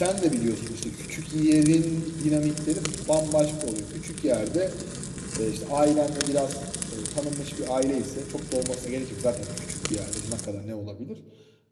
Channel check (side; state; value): both; identical; correlation 1.00